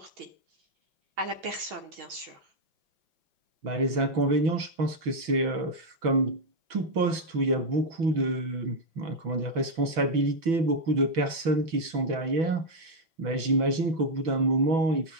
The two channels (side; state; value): left; late; 6.1 ms